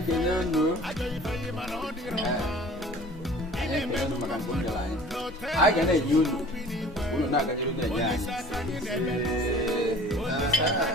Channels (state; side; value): normal; both; correlation 0.47